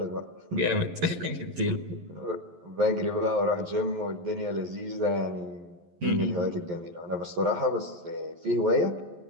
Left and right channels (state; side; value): late; left; 11 ms